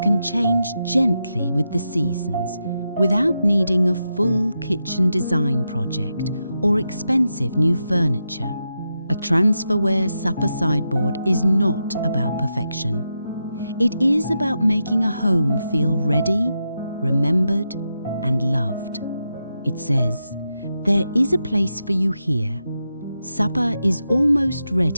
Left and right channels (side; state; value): both; inverted; correlation -0.87